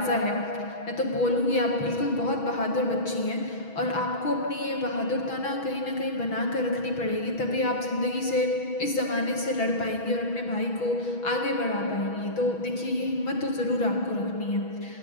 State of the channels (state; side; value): late; right; 6.2 ms